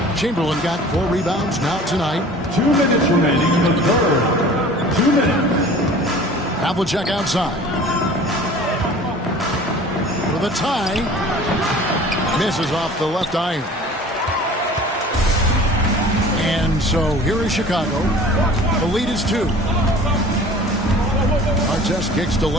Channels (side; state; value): both; normal; correlation 0.45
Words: Chamberlain got 4 rebounds now tonight. 2 minutes remaining in the third. 2 minutes. Havlicek outside. For the tie. Misses off the left iron. And so here is Chicago. The lead is 2. Artest kicks to